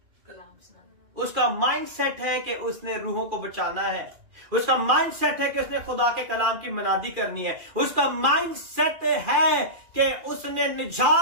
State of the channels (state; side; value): late; left; 2.4 ms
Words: उसका माइंडसेट है कि उसने रूहों को बचाना है। उसका माइंडसेट है कि उसने खुदा के कलाम की मनादी करनी है। उसका माइंडसेट है कि उसने